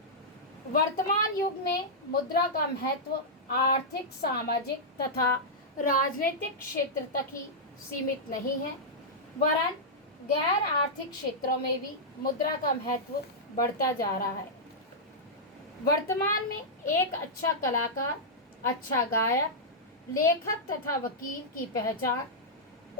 वर्तमान युग में मुद्रा का महत्व आर्थिक, सामाजिक तथा राजनीतिक क्षेत्र तक ही सीमित नहीं है, वरन गैर आर्थिक क्षेत्रों में भी मुद्रा का महत्व बढ़ता जा रहा है। वर्तमान में एक अच्छा कलाकार, अच्छा गायक, लेखक तथा वकील की पहचान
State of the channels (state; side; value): normal; both; correlation -0.09